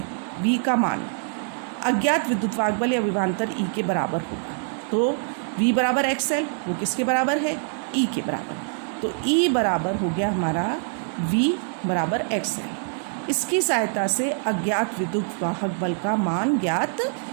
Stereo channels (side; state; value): left; silent; 62 dB below the other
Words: V का मान अज्ञात विद्युत वाहक बल या विभवांतर E के बराबर होगा। तो V बराबर XL, वो किसके बराबर है, E के बराबर। तो E बराबर हो गया हमारा V बराबर XL। इसकी सहायता से अज्ञात विद्युत वाहक बल का मान ज्ञात